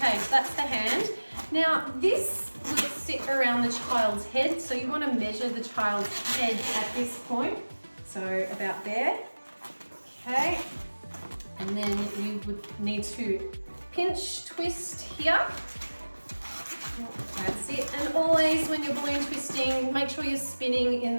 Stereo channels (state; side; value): inverted; both; correlation -1.00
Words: so that's the hand. Now this will sit around the child's head, so you want to measure the child's head at this point. So about there. Okay, and then you would need to pinch twist here. That's it. And always when you're balloon twisting, make sure you're spinning in